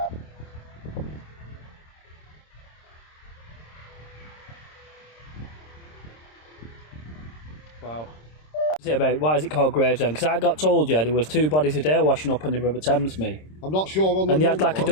Wow. What's it about? Why is it called Gravesend? Because I got told, there was 2 bodies a day washing up on the River Thames, me. I'm not sure on the And they had like a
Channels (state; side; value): late; right; 26 ms